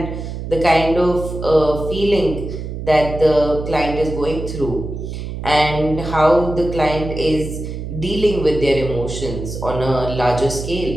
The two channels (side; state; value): right; noise; hum, 7 dB below the sound